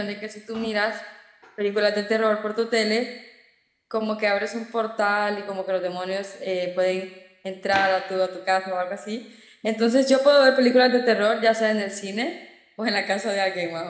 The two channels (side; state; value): both; identical; correlation 1.00